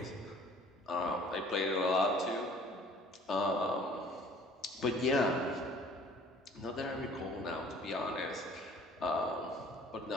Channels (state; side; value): normal; both; correlation 0.52